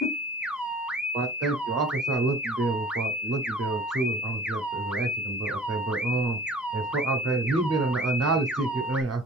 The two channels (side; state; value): both; normal; correlation 0.46